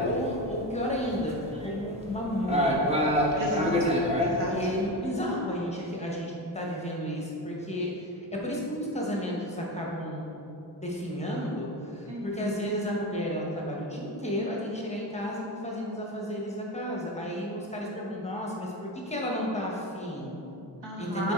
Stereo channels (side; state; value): both; normal; correlation 0.22